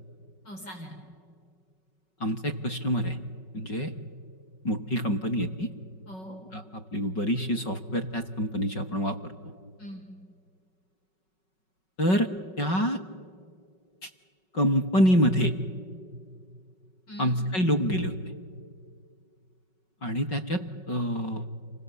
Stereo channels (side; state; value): right; late; 5.4 ms